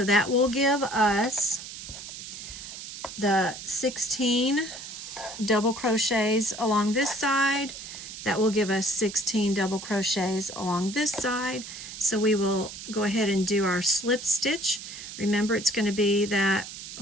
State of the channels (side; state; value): right; noise; hiss, 11 dB below the sound